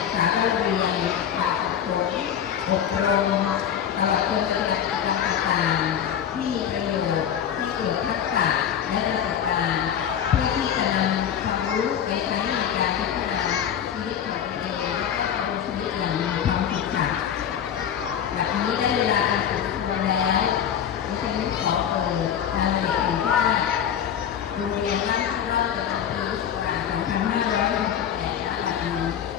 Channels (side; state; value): right; quieter; 9.0 dB